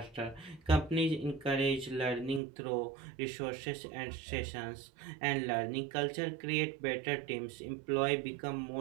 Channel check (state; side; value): drops out; left; at 2.4 s